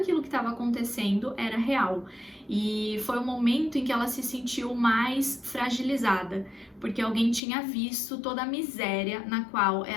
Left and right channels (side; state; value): right; drops out; at 7.4 s